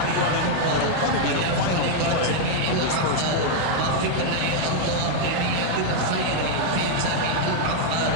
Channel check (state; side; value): different; both; correlation 0.00